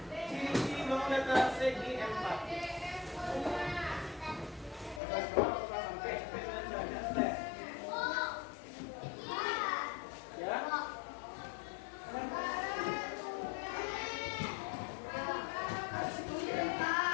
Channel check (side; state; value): right; drops out; at 5.0 s